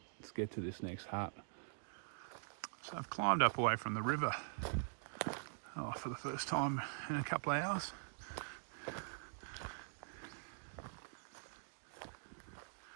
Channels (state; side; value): silent; left; digital silence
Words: let's get to this next hut. So I've climbed up away from the river for the first time in a couple of hours.